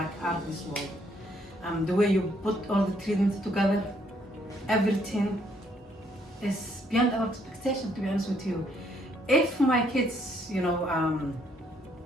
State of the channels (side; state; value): both; normal; correlation 0.69